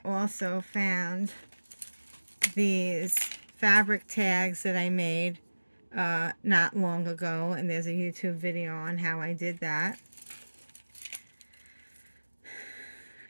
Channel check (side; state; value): both; inverted; correlation -1.00